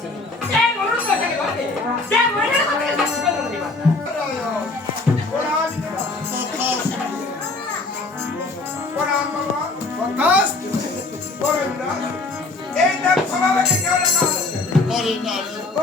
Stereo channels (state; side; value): quieter; right; 3.3 dB